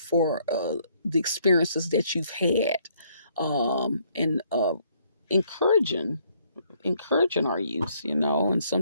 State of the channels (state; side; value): inverted; both; correlation -0.67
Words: the experiences that you've had, and encouraging our youth, and